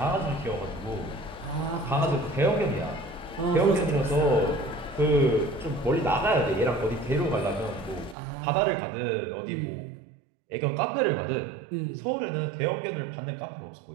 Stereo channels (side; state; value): left; drops out; at 8.2 s